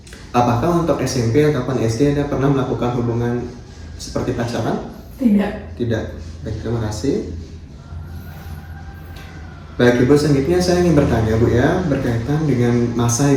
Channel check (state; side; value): identical; both; correlation 1.00